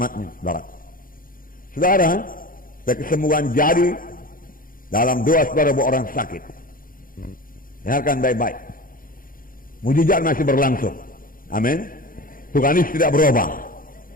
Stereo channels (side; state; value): right; late; 0.41 ms